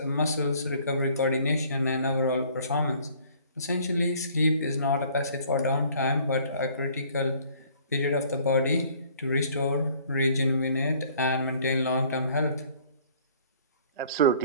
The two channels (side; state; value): both; inverted; correlation -0.56